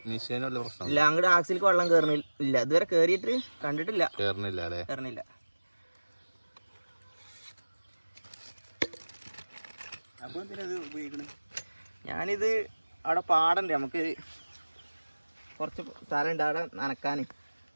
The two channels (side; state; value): both; inverted; correlation -1.00